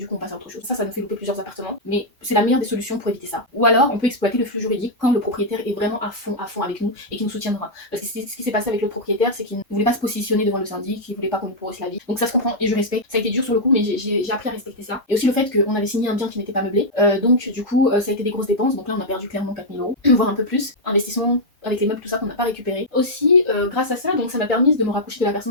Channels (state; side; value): normal; both; correlation -0.04